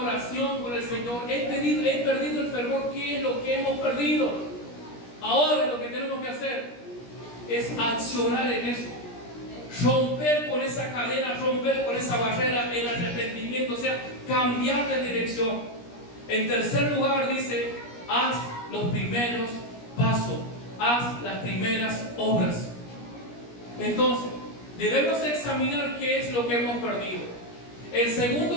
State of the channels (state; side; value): late; right; 17 ms